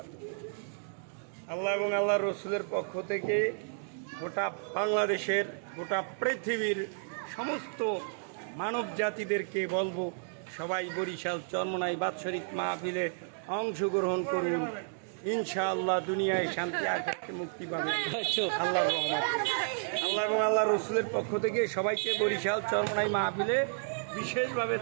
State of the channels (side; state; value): left; silent; digital silence